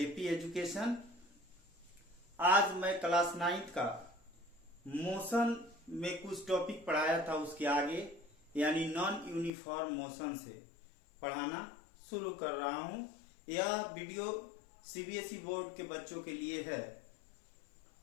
education. आज मैं class 9th का मोशन में कुछ टॉपिक पढ़ाया था, उसके आगे यानी नॉन यूनिफॉर्म मोशन से पढ़ाना शुरू कर रहा हूं। यह वीडियो सीबीएसई बोर्ड के बच्चों के लिए है।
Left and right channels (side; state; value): right; drops out; at 9.5 s